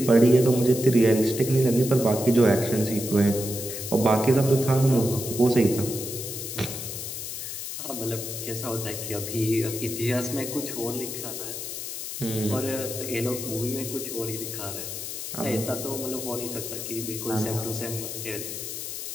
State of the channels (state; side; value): noise; left; hiss, 6 dB below the sound